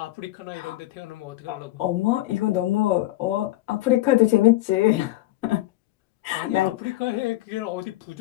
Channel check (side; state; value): right; quieter; 16.7 dB